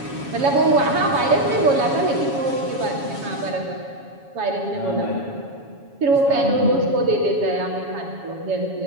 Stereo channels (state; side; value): late; left; 7.2 ms